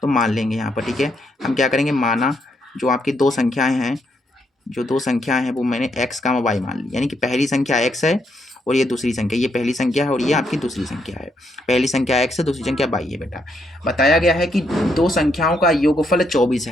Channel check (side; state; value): both; normal; correlation 0.76